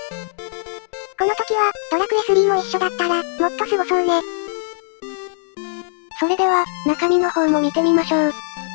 この時は、ドラクエ3も一緒だったら、もっとすごそうね。それでは、中身の方も見てみましょう。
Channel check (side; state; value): right; silent; digital silence